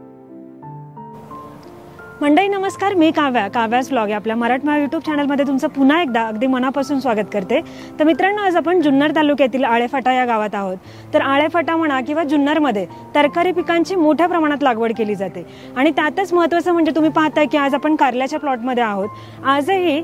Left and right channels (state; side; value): identical; both; correlation 1.00